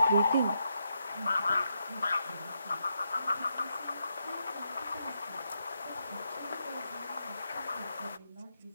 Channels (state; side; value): inverted; both; correlation -0.81